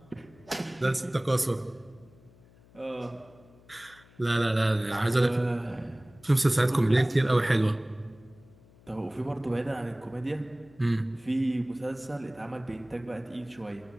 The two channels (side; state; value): left; noise; hum, 26 dB below the sound